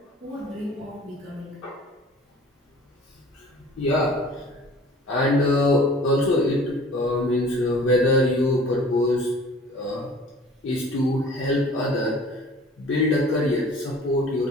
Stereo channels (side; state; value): both; normal; correlation 0.47